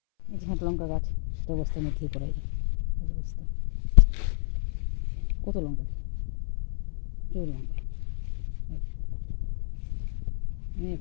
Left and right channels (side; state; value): right; silent; 58 dB below the other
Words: এই যে একটা লঙ্কা গাছ, সেটা বস্তার মধ্যেই করা যায়, এই যে বস্তা, কত লঙ্কা, প্রচুর লঙ্কা, অনেক